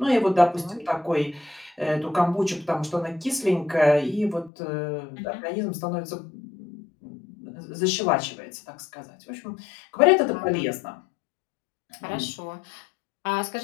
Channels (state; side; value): drops out; right; at 4.5 s